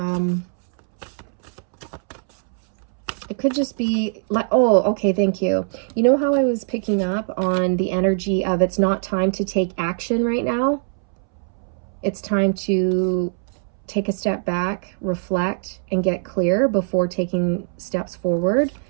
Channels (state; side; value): silent; left; 64 dB below the other